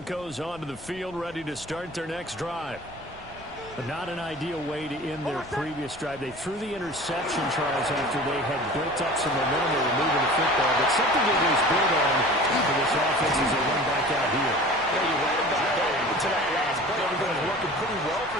onto the field, ready to start their next drive. But not an ideal way to end their previous drive. They threw the interception, Charles, after they had built up some momentum. They were moving the football, but something they was built on for this offense as they run back out here. Yeah, you're right about that. To that last play, everything was working pretty well for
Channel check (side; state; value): left; noise; rumble, 21 dB below the sound